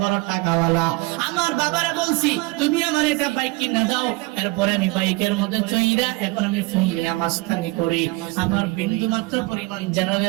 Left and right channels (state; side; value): quieter; left; 22.7 dB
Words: বড় টাকাওয়ালা, আমার বাবারে বলছি তুমি আমার একটা বাইক কিনা দাও। এরপরে আমি বাইকের মধ্যে চইরা এখন আমি ফুলিয়া মাস্তানি করি, আমার বিন্দু মাত্র পরিমাণ